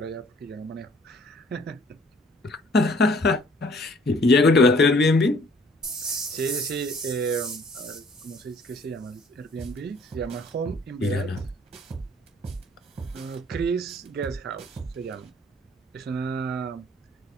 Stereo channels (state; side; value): normal; both; correlation 0.57